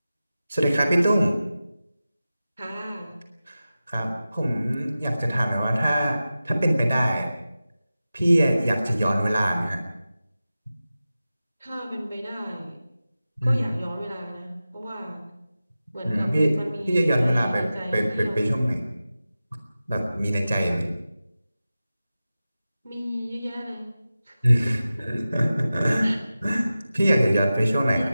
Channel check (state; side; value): inverted; both; correlation -0.95